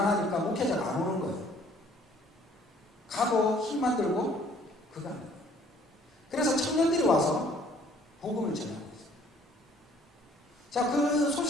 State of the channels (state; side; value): normal; both; correlation 0.58